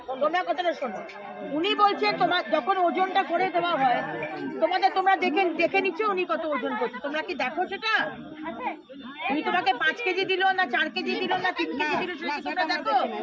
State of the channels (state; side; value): identical; both; correlation 1.00